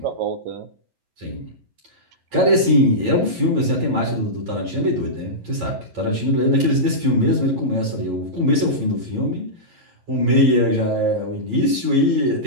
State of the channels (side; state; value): left; late; 11 ms